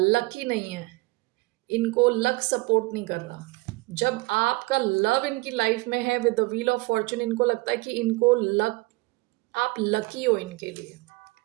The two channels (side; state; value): left; quieter; 23.2 dB